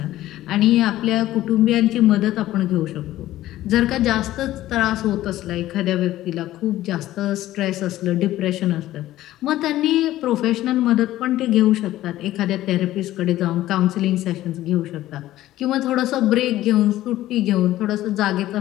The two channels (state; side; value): quieter; right; 14.8 dB